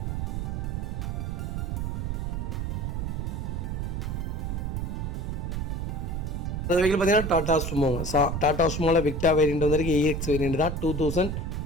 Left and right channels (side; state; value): right; noise; rumble, 2 dB below the sound